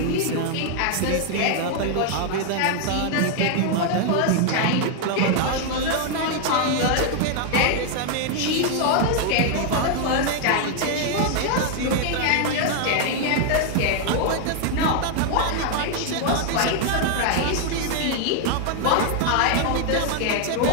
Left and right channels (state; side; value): different; both; correlation 0.00